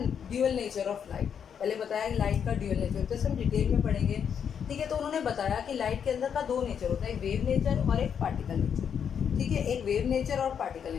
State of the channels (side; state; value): right; quieter; 7.7 dB